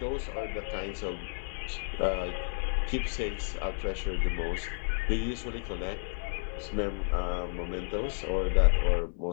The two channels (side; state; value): right; silent; digital silence